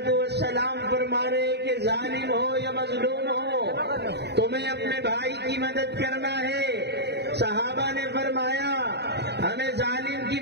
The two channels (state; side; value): late; left; 0.49 ms